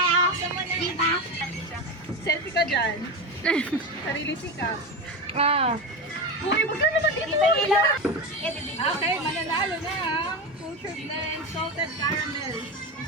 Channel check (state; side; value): normal; both; correlation 0.19